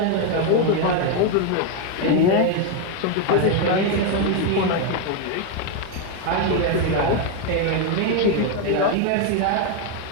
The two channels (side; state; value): both; different; correlation 0.01